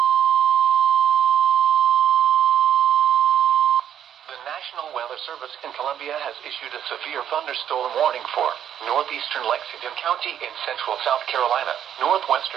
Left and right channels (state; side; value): quieter; left; 9.7 dB